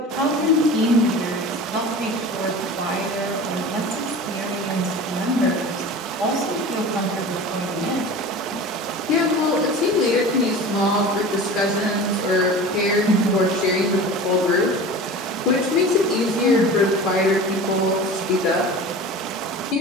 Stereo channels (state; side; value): normal; both; correlation 0.36